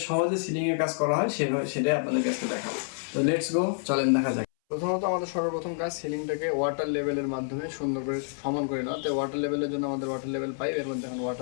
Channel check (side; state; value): right; silent; 59 dB below the other